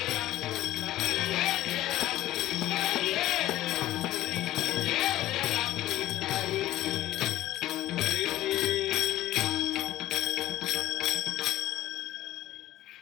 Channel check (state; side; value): quieter; right; 14.7 dB